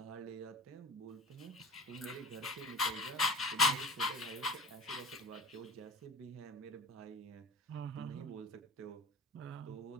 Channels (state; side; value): normal; both; correlation 0.35